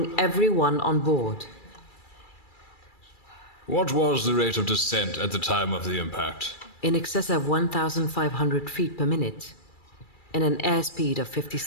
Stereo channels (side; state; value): right; late; 2.3 ms